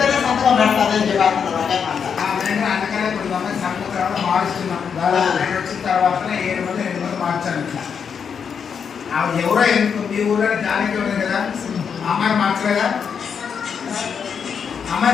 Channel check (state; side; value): quieter; right; 6.8 dB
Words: ఎవరో మీ ఊళ్ళో జానికి ఉంది కదా, అమ్మాయి మార్చలేదా?